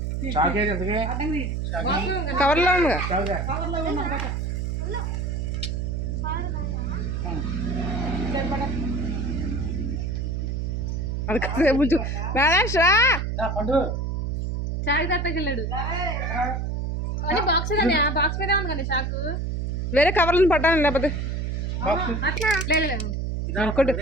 cover लो వేరే కవర్లను పట్టాను లేకపోతే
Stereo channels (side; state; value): right; noise; hum, 1 dB below the sound